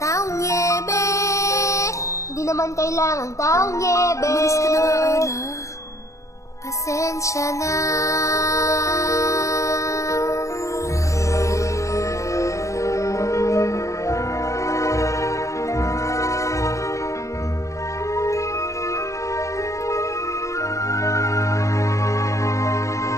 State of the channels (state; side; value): late; right; 0.15 ms